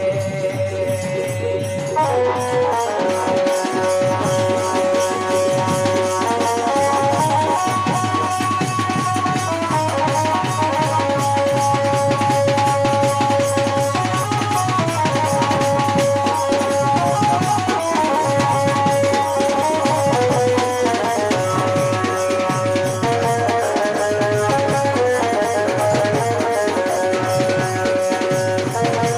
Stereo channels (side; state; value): both; identical; correlation 1.00